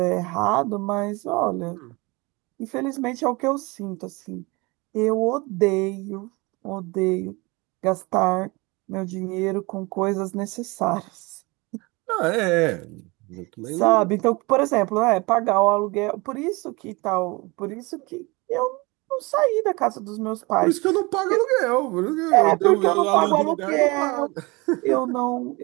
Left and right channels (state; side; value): quieter; left; 25.2 dB